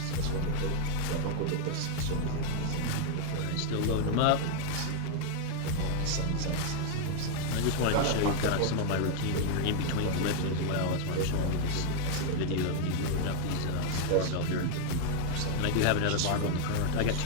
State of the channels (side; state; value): both; different; correlation 0.00